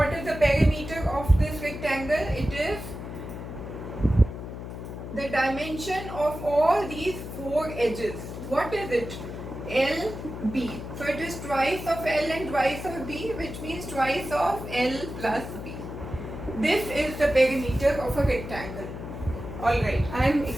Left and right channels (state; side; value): noise; left; hum, 9 dB below the sound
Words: is the perimeter of this rectangle? It is the dimension of all these 4 edges. What is it? LB. So it is twice of L and twice of B, which means twice of L plus B. This is the perimeter of a rectangle. Alright, I am